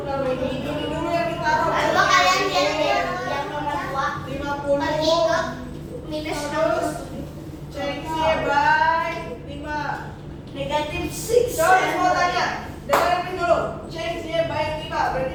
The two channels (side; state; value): both; identical; correlation 1.00